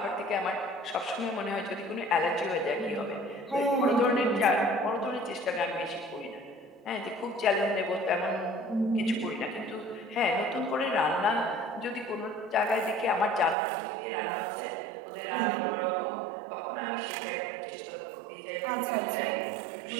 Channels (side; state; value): left; drops out; at 13.6 s